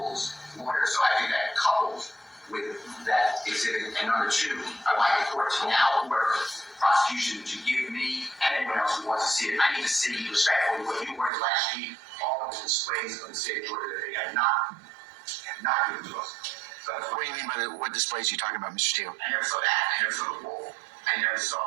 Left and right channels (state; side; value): drops out; left; at 11.3 s